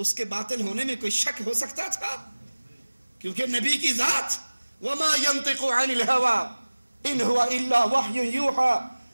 کے باطل ہونے میں کوئی شک ہو سکتا تھا؟ کیونکہ نبی کی ذات وما ينطق عن الهوى ان هو الا وحی یوحى،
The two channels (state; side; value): inverted; both; correlation -1.00